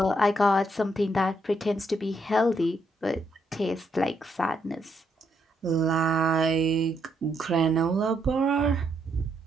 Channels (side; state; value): both; normal; correlation 0.76